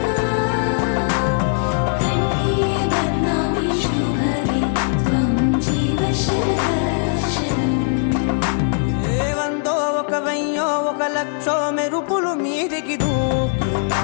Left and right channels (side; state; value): right; silent; 61 dB below the other